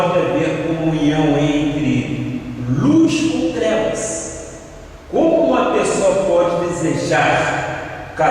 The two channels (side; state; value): both; identical; correlation 1.00